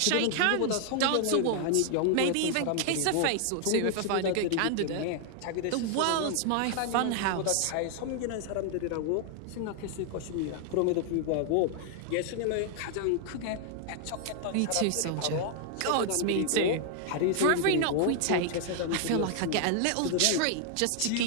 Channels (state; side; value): different; both; correlation 0.00